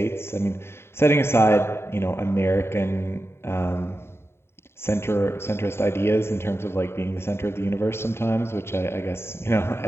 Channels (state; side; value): late; right; 0.12 ms